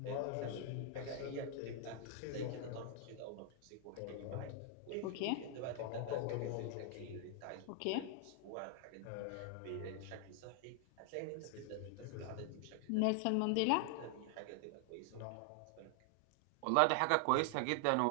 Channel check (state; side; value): different; both; correlation 0.00